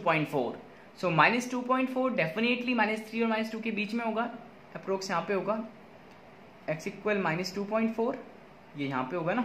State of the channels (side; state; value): both; identical; correlation 1.00